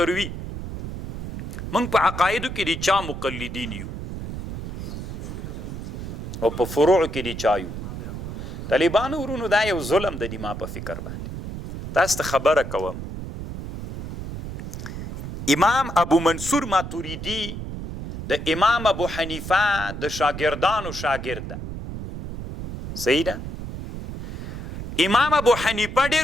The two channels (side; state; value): right; noise; rumble, 8 dB below the sound